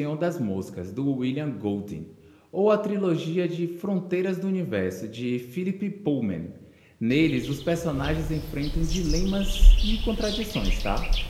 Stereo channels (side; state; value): both; identical; correlation 1.00